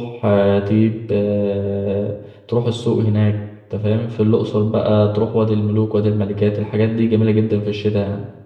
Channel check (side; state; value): both; identical; correlation 1.00